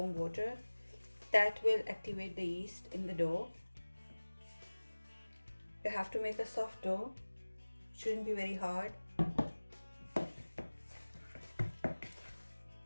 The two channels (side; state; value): both; inverted; correlation -1.00